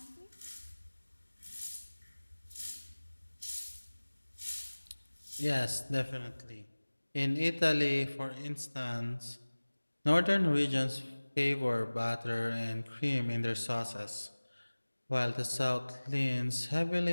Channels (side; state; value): both; inverted; correlation -1.00